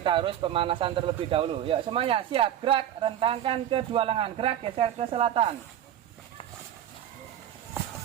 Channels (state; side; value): quieter; left; 10.9 dB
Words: harus pemanasan terlebih dahulu. Ya, semuanya siap gerak. Rentangkan kedua lengan. Gerak, geser ke selatan.